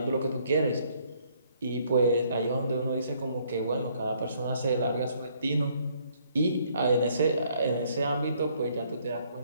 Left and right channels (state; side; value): inverted; both; correlation -0.66